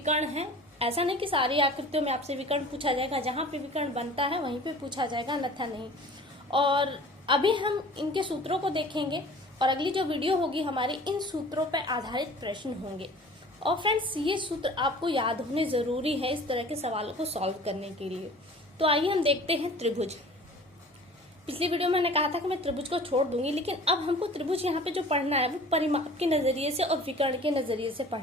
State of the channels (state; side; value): normal; both; correlation 0.45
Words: है, ऐसा नहीं कि सारी आकृतियों में आपसे विकर्ण पूछा जाएगा। जहाँ पे विकर्ण बनता है वहीं पे पूछा जाएगा, अन्यथा नहीं। और अभी हम इनके सूत्रों को देखेंगे और अगली जो वीडियो होगी हमारी इन सूत्रों पर आधारित प्रश्न होंगे। और फ्रेंड्स, ये सूत्र आपको याद होने जरूरी है इस तरह के सवालों को सॉल्व करने के लिए। तो आइए हम देखते हैं त्रिभुज। पिछली वीडियो में मैंने कहा था कि मैं त्रिभुज को छोड़ दूंगी, लेकिन अब हमको त्रिभुज यहाँ पे जो पढ़ना है वो परिमाप के नजरिए से और विकर्ण के नजरिए से